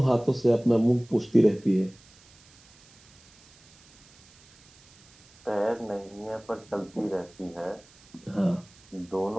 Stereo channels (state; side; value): noise; right; hiss, 27 dB below the sound